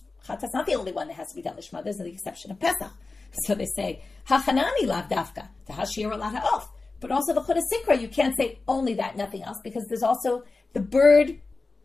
chatat's not the only one that has to be done lishma. There's the exception of Pesach. So they say hachanani lav dafka hashir alat ha'of. But also the chutah sikra, you can't say only that, nothing else, because there's also the bird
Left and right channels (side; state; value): right; quieter; 3.7 dB